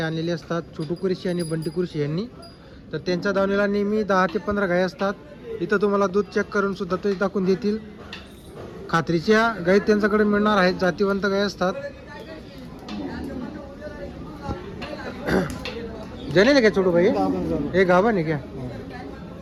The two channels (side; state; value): both; identical; correlation 1.00